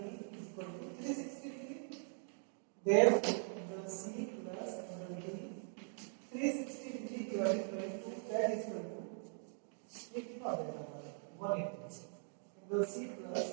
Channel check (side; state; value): left; silent; 50 dB below the other